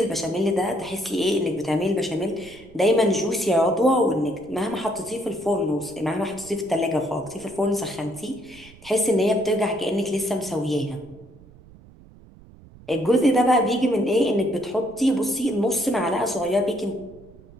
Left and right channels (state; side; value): noise; right; rumble, 23 dB below the sound